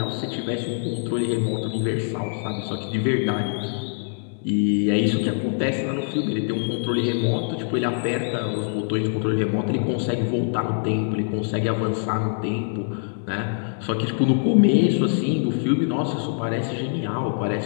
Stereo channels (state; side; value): silent; right; 60 dB below the other